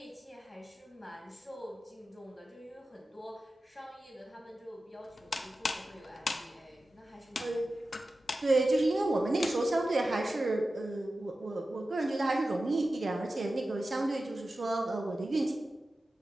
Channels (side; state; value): both; normal; correlation 0.94